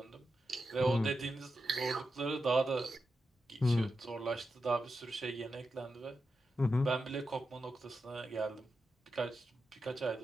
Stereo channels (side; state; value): both; normal; correlation 0.88